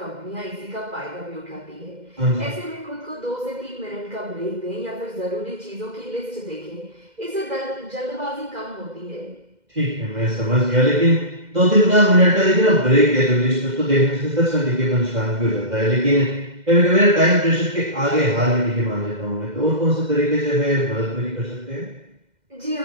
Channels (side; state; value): left; late; 2.0 ms